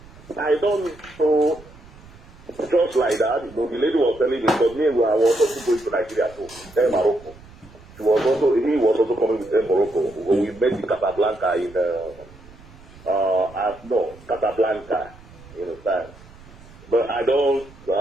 I don't know, just like that, the lady was telling me, but me, I was also going to Nigeria too, then Morocco. He was also coming with them Morocco. When we met in Casablanca Casablanca, you understand? But I don't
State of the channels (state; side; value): noise; right; rumble, 22 dB below the sound